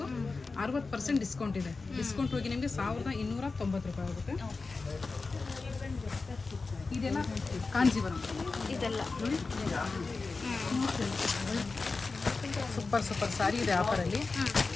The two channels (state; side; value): quieter; right; 4.0 dB